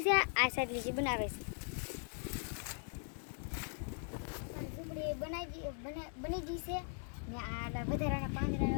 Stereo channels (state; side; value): silent; right; 51 dB below the other